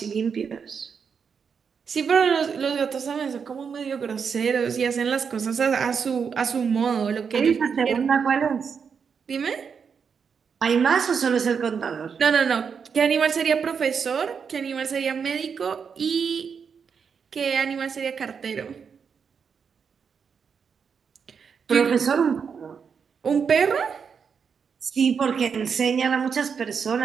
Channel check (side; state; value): left; quieter; 6.4 dB